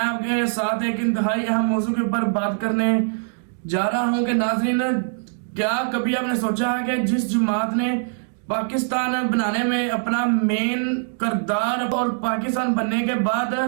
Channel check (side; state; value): left; silent; digital silence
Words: साथ एक इंतहाई अहम मौजू के ऊपर बात करने जा रहा हूं कि नाजरीन, क्या कभी आपने सोचा है कि जिस जमात ने पाकिस्तान बनाने में अपना मेन किरदार और पाकिस्तान बनने के बाद